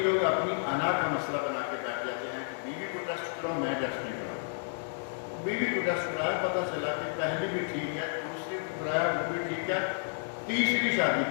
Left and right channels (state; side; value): silent; right; digital silence